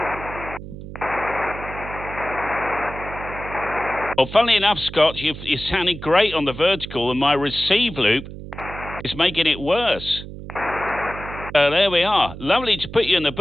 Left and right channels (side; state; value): right; noise; hum, 12 dB below the sound